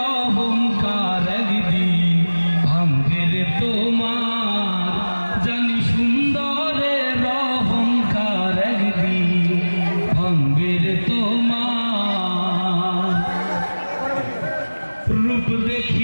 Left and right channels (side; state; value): both; inverted; correlation -1.00